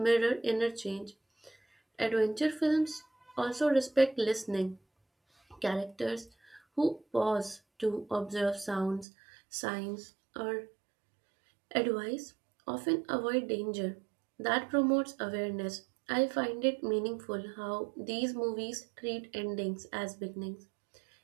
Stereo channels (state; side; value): drops out; left; at 9.1 s